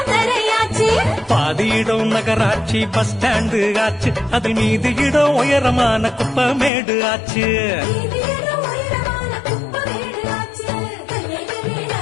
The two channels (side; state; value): right; drops out; at 6.7 s